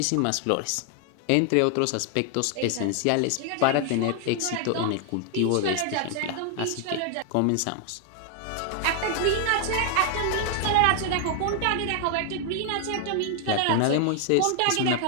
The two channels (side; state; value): both; different; correlation 0.00